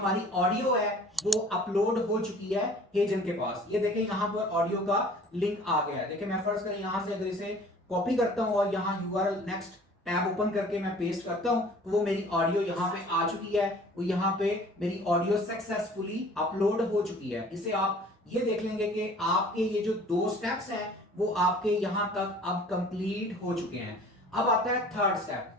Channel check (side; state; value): both; normal; correlation 0.49